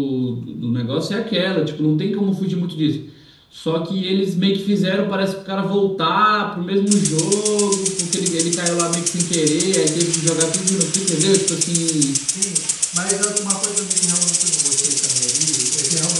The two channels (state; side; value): identical; both; correlation 1.00